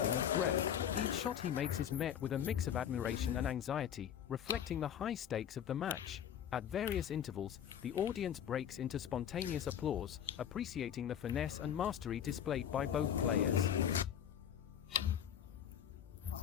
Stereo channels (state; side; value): quieter; right; 9.3 dB